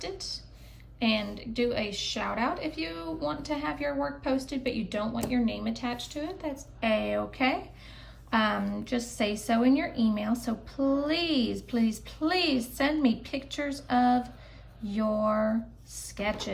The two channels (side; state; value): both; identical; correlation 1.00